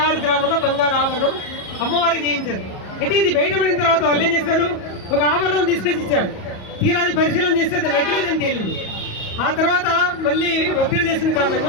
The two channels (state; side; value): late; right; 37 ms